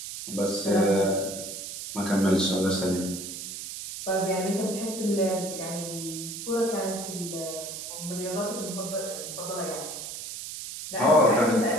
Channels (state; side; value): noise; right; hiss, 8 dB below the sound